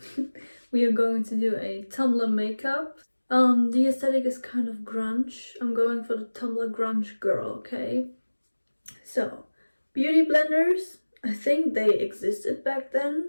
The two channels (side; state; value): both; inverted; correlation -1.00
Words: we are going to do a Tumblr makeup. The aesthetic is kind of grunge. I'm going for the Tumblr grunge girl, okay? So, beauty blenders, I think they existed back